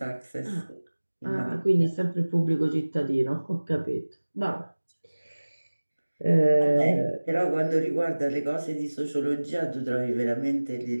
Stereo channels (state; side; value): inverted; both; correlation -1.00